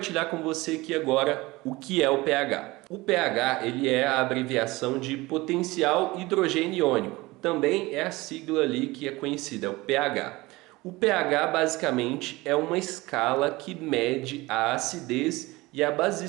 com você aqui agora o que é o pH. O pH ele é a abreviação de potencial hidrogênio iônico, também é a sigla ali que é conhecida, é o pH. O pH basicamente é uma escala que mede a acidez e a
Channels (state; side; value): quieter; left; 21.1 dB